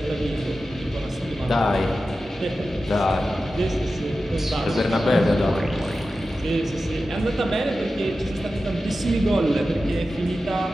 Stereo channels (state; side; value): normal; both; correlation 0.93